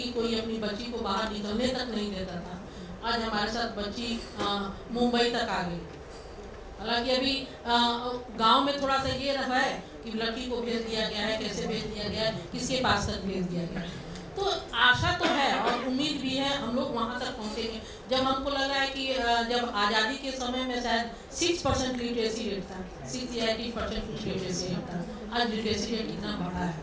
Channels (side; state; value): both; identical; correlation 1.00